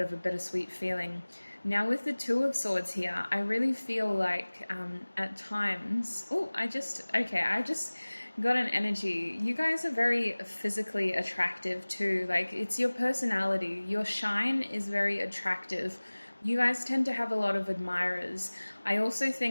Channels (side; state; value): both; inverted; correlation -1.00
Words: of a bittersweet feeling. Now with the Two of Swords here, I really feel like at times, I just got an energy. You guys are very physically attractive too. Like, it's your personality. Your shine is very attractive. You guys tend to have a lot of admirers. I also